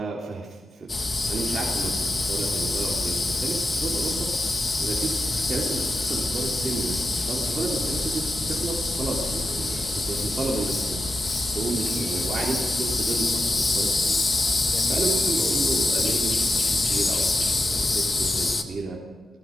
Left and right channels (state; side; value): normal; both; correlation 0.90